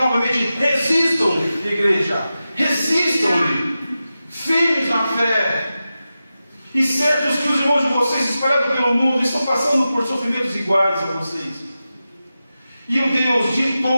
novamente, resistam, igreja, resistam-lhe, firmes na fé. E certos que os irmãos de vocês, espalhados pelo mundo, estão passando por sofrimentos iguais a vocês. E o Deus de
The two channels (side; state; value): both; inverted; correlation -0.93